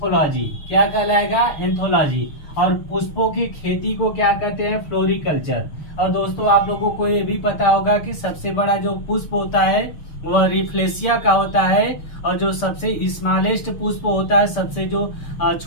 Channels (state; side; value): late; right; 6.6 ms